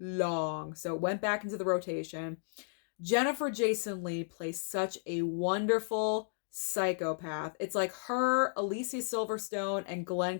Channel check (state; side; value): silent; right; digital silence